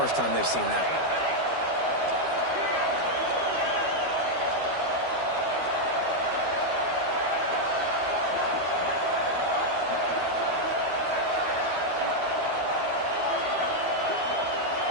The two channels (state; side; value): late; left; 12 ms